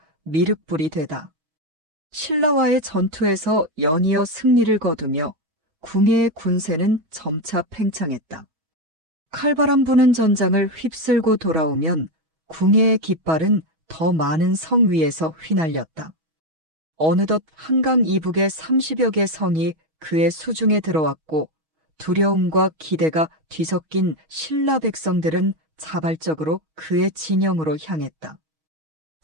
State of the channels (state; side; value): late; left; 6.3 ms